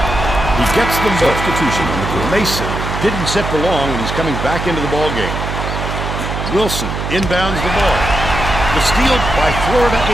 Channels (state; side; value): noise; right; hum, 4 dB below the sound